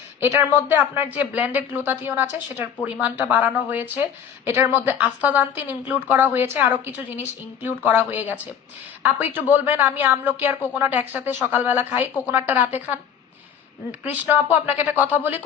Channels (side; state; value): right; quieter; 8.1 dB